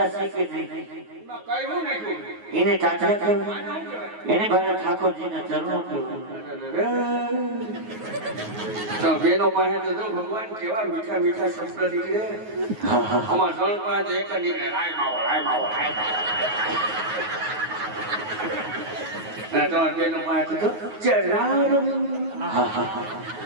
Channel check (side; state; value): left; late; 9.4 ms